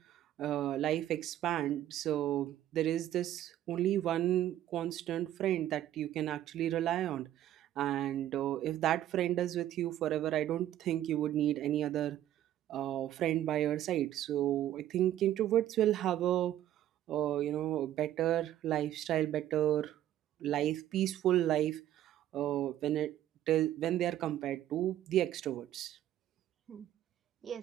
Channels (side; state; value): left; quieter; 12.4 dB